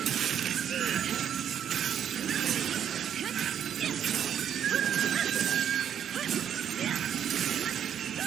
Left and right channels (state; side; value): quieter; left; 9.1 dB